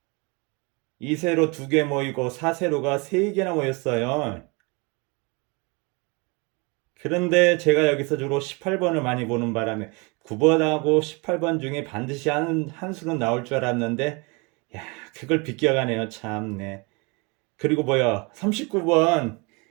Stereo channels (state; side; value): quieter; left; 29.2 dB